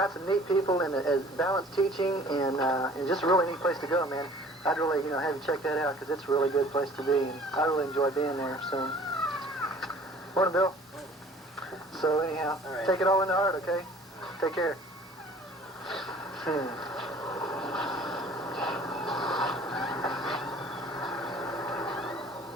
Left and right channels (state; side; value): normal; both; correlation 0.50